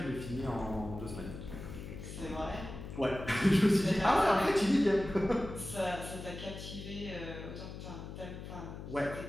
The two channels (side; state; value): left; noise; hum, 10 dB below the sound